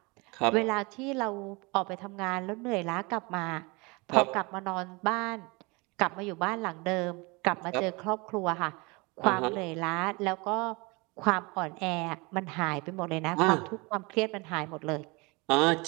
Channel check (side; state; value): left; quieter; 26.8 dB